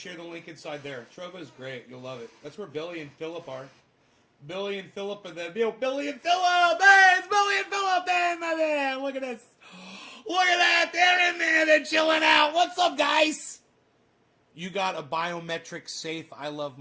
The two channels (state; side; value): identical; both; correlation 1.00